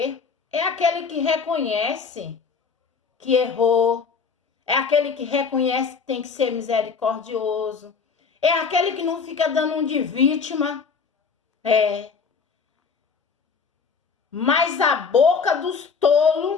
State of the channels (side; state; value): right; quieter; 5.5 dB